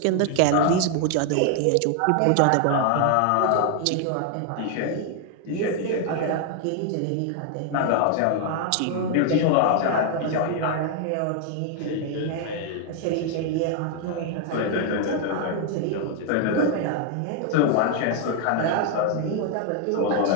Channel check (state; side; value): different; both; correlation 0.00